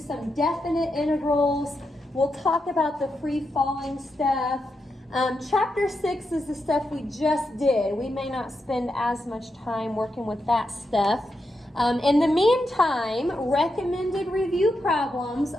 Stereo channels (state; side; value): normal; both; correlation 0.85